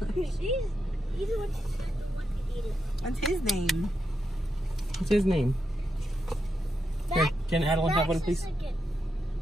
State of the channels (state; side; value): normal; both; correlation 0.85